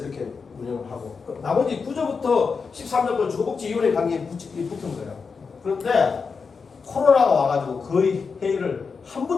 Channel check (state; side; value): quieter; right; 5.2 dB